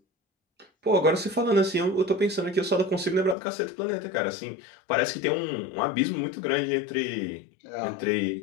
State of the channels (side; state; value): right; drops out; at 3.4 s